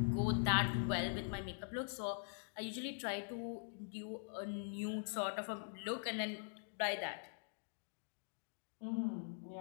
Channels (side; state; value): right; silent; digital silence